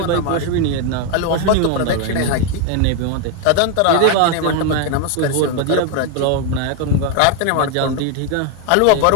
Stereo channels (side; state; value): both; different; correlation 0.01